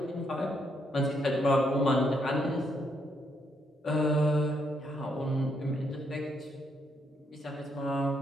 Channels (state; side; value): normal; both; correlation 0.76